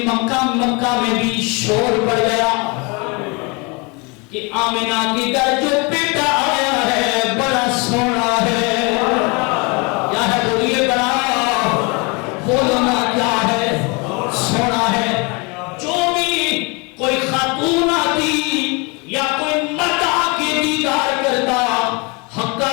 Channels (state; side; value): quieter; right; 29.7 dB